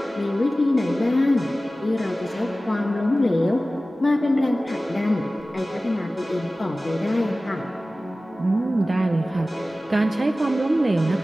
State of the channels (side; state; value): both; normal; correlation 0.96